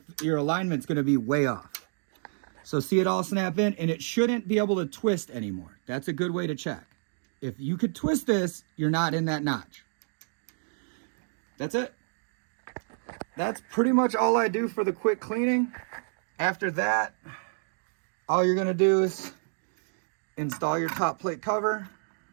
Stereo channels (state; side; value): silent; left; digital silence